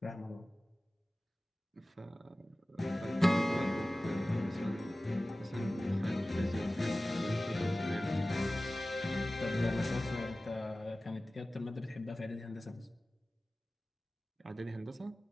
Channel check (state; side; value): normal; both; correlation 0.97